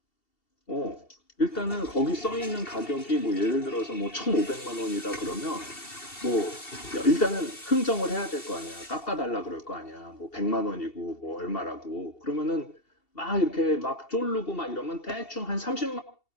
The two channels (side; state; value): right; late; 2.7 ms